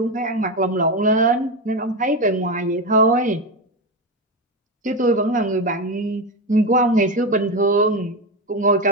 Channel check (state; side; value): normal; both; correlation 0.15